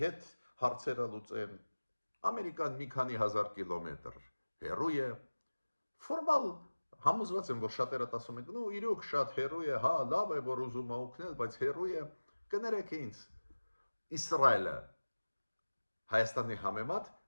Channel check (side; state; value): both; inverted; correlation -1.00